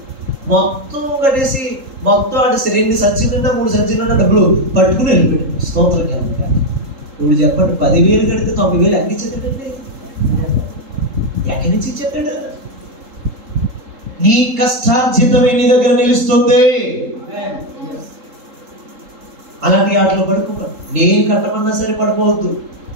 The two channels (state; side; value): late; left; 3.7 ms